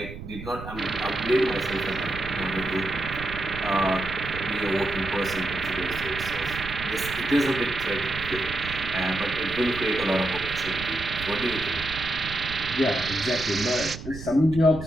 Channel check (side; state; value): right; noise; rumble, 11 dB below the sound